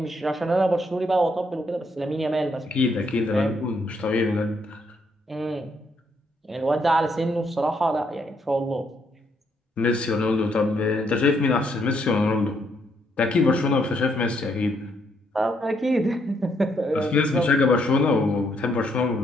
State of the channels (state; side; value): normal; both; correlation 0.74